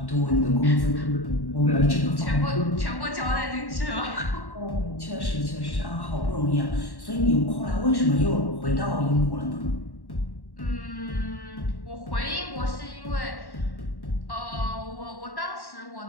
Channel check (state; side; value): late; right; 1.1 ms